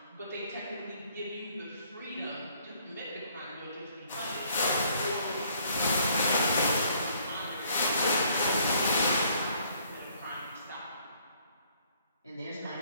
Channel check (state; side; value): inverted; both; correlation -0.63